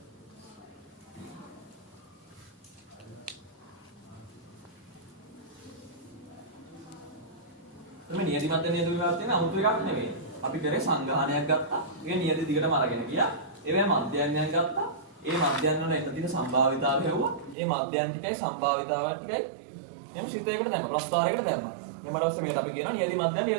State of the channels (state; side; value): drops out; left; at 17.6 s